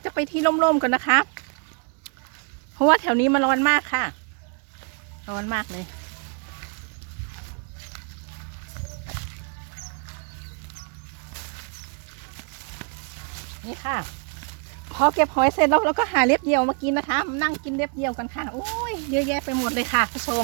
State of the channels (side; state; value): left; quieter; 39.6 dB